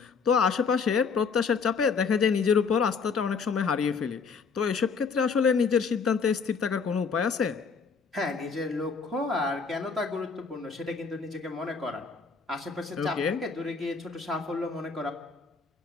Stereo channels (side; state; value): right; quieter; 5.3 dB